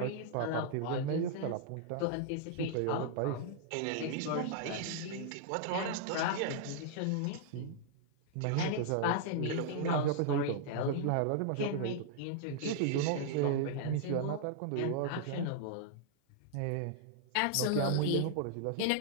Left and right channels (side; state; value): both; different; correlation -0.01